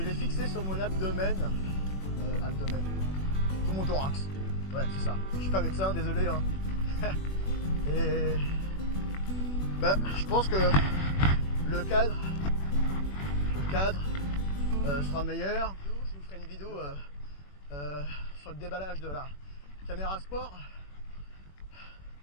fixé sur mon abdomen, sur mon thorax. Ouais, c'est ça. Je suis pas médecin, désolé. Hein. Et je pense que le cadre sera meilleur. Je vous ferai une vidéo sur le déballage de la caméra sport.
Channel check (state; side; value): late; right; 21 ms